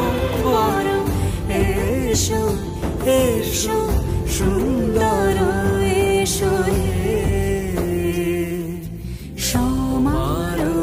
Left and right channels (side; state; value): both; identical; correlation 1.00